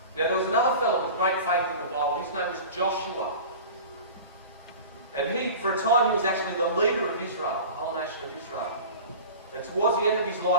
Now there was another fellow with great faith in the Bible. His name was Joshua. And he, for a time, he was actually the leader of Israel, the whole nation of Israel. And towards the end of his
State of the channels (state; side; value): inverted; both; correlation -0.37